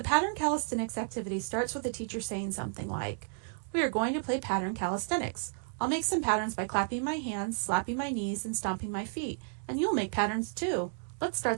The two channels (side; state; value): left; silent; digital silence